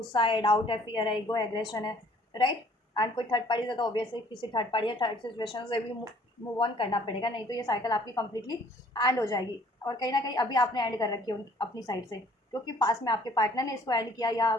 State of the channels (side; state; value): both; normal; correlation 0.58